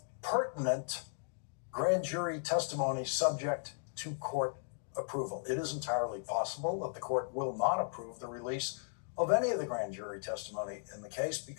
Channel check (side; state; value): right; silent; digital silence